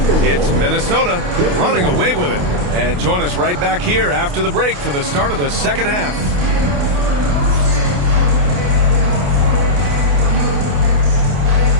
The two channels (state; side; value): late; left; 28 ms